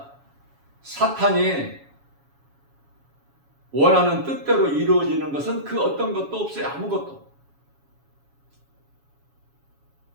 사탄이 원하는 뜻대로 이루어지는 것은 그 어떤 것도 없어요. 아무것도.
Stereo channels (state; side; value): late; left; 7.2 ms